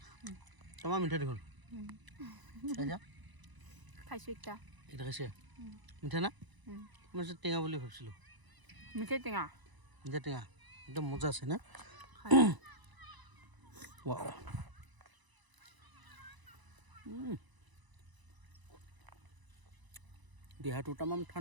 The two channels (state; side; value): late; left; 1.0 ms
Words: তোমাৰ মিঠা দেখোন খাইছো একটা এটা খাইছে মিঠা না মই টেঙা বুলি ভাবিছিলোঁ মিঠাই টেঙা মিঠা টেঙা একদম মজা আছে না ৱাও দেহাটো তামাম